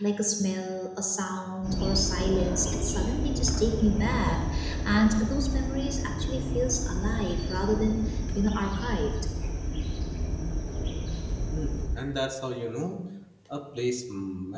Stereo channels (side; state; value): both; identical; correlation 1.00